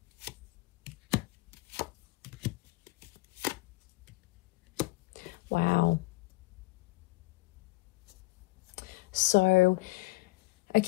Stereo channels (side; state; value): right; quieter; 22.5 dB